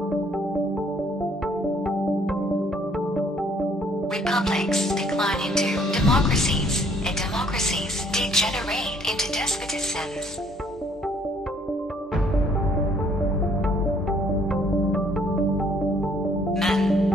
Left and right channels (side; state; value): both; normal; correlation 0.63